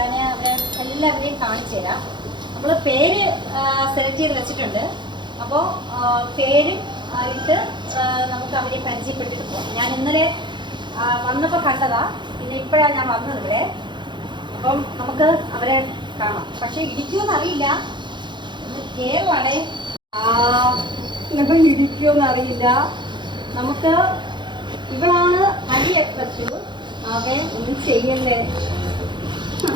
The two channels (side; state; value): left; late; 0.22 ms